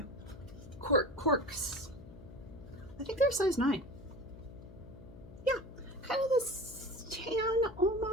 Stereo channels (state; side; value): noise; left; hum, 17 dB below the sound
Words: Corks. I think they're size 9. Yeah. Kind of this tan,